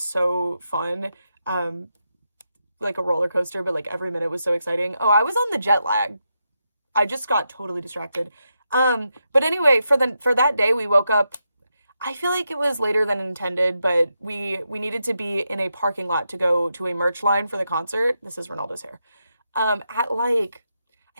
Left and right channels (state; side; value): inverted; both; correlation -0.85